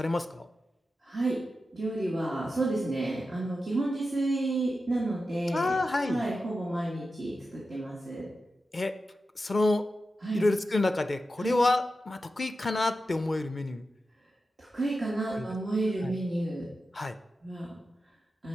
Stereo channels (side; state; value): both; normal; correlation 0.91